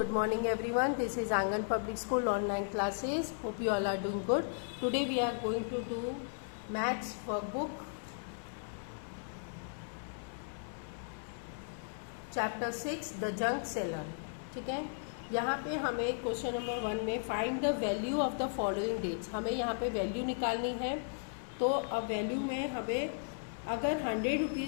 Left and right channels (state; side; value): silent; right; 54 dB below the other